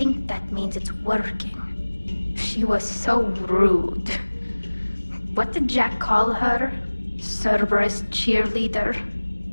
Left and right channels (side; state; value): both; inverted; correlation -1.00